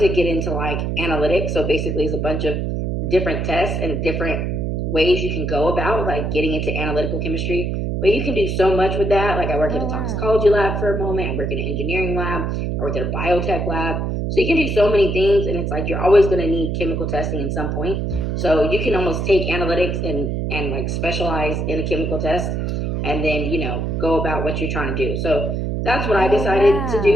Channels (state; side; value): noise; right; hum, 1 dB below the sound